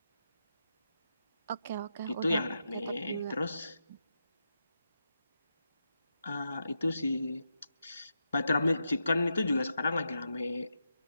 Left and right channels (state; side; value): inverted; both; correlation -0.85